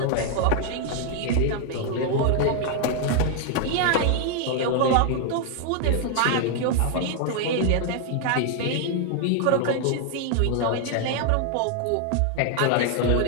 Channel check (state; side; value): different; both; correlation 0.00